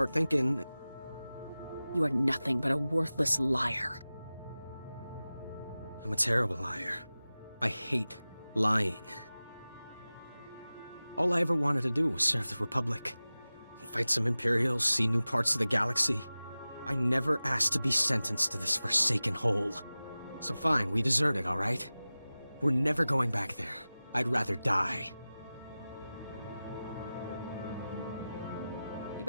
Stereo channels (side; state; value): both; inverted; correlation -0.97